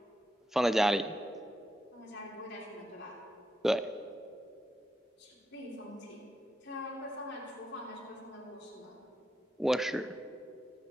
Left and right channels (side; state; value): both; normal; correlation 0.84